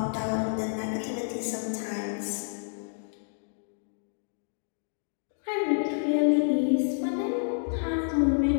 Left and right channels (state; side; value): silent; right; digital silence